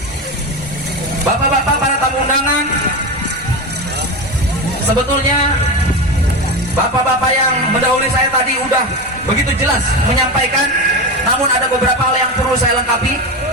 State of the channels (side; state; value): both; normal; correlation 0.20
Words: Bapak-bapak, para tamu undangan, sebetulnya bapak-bapak yang mendahului saya tadi udah begitu jelas menyampaikan, namun ada beberapa hal yang perlu saya lengkapi.